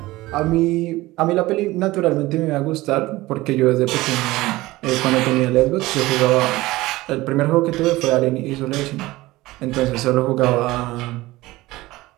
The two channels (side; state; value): left; quieter; 18.8 dB